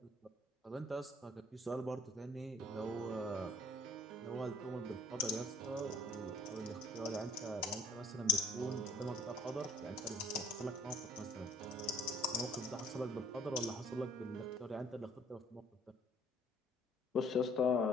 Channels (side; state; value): both; normal; correlation 0.57